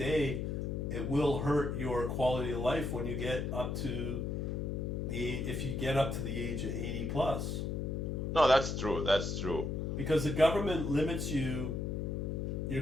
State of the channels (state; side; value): noise; left; hum, 1 dB below the sound